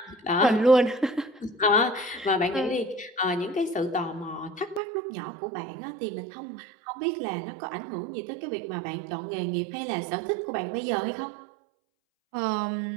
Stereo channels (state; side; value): drops out; left; at 4.8 s